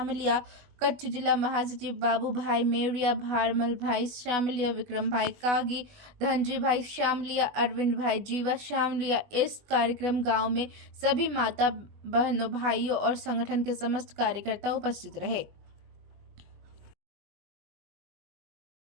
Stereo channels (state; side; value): late; left; 20 ms